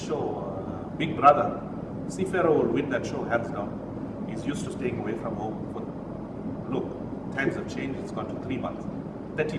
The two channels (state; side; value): identical; both; correlation 1.00